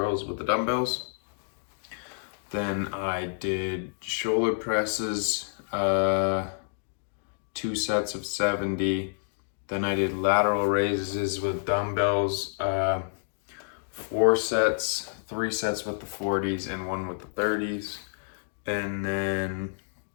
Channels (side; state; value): right; silent; digital silence